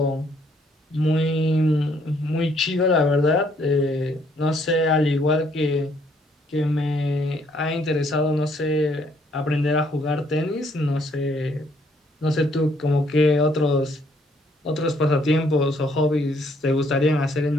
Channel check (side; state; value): both; normal; correlation 0.67